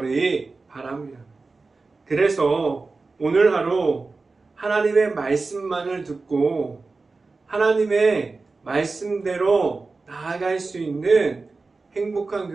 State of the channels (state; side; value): quieter; left; 3.9 dB